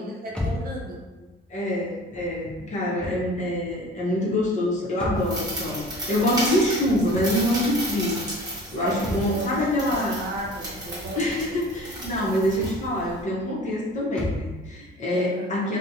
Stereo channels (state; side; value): normal; both; correlation 0.44